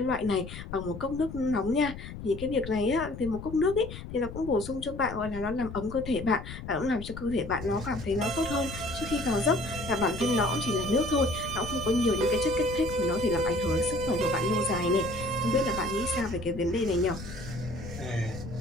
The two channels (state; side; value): noise; left; rumble, 10 dB below the sound